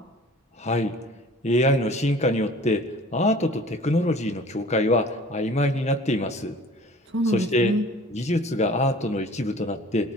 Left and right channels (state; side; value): normal; both; correlation 0.47